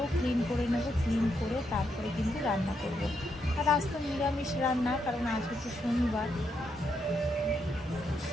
ক্লিন করে নেব, ক্লিন করে তারপরে কিন্তু রান্না করব। আর আজ তো নিরামিষ রান্না, কারণ আজ হচ্ছে শনিবার।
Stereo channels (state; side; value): normal; both; correlation 0.79